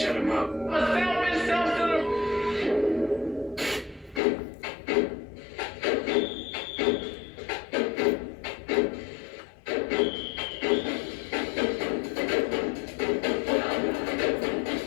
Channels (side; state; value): right; drops out; at 4.2 s